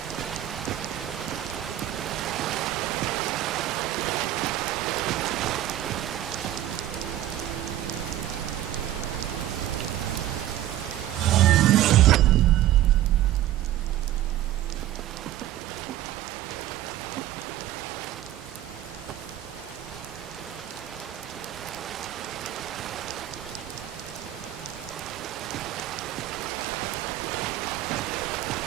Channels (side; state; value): left; quieter; 13.2 dB